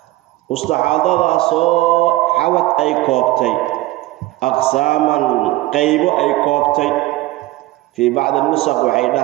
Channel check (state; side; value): quieter; left; 18.0 dB